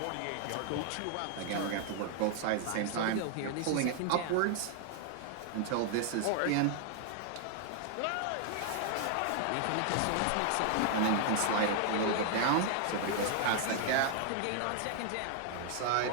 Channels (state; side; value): different; both; correlation 0.00